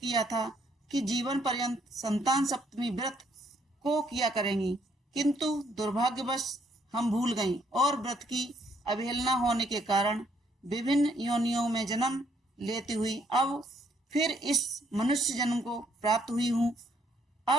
था कि जीवन पर्यंत संतान सप्तमी व्रत को किया करेंगी, किंतु दुर्भाग्यवश हम भूल गईं और व्रत की अवहेलना होने के कारण विभिन्न योनियों में जन्म लेती हुई अब फिर इस मनुष्य जन्म को प्राप्त हुई हूँ।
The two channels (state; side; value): normal; both; correlation 0.70